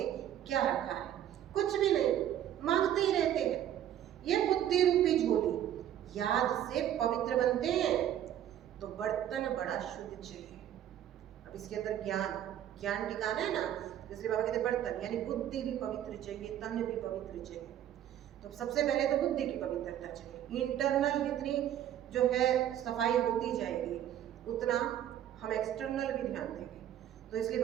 क्या रखा है? कुछ भी नहीं, मांगते ही रहते हैं। ये बुद्धि रूपी झोली याद से पवित्र बनते हैं तो बर्तन बड़ा शुद्ध चाहिए। अब इसके अंदर ज्ञान टिकाना है ना, जैसे बाबा कहते बर्तन यानी बुद्धि भी पवित्र चाहिए, तन भी पवित्र चाहिए। तो सबसे पहले तो बुद्धि की पवित्रता चाहिए। इंटरनल जितनी जो है सफाई होती जाएगी उतना हम एक्सटर्नल भी ध्यान देंगे। तो इसलिए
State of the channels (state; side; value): quieter; left; 11.1 dB